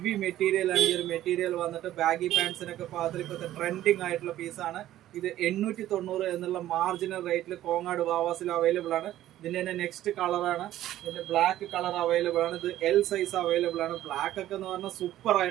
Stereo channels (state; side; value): quieter; left; 13.5 dB